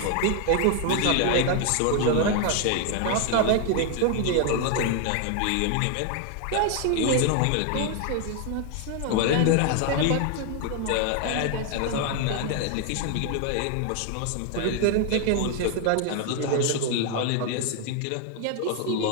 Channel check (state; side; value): different; both; correlation 0.01